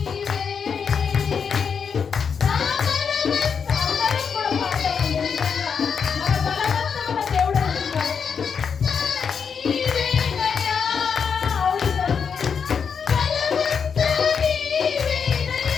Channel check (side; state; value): right; quieter; 6.4 dB